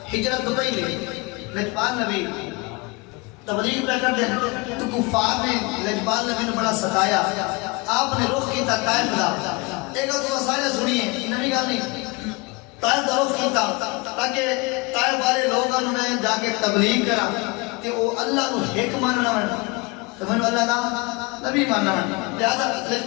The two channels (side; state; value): right; quieter; 26.7 dB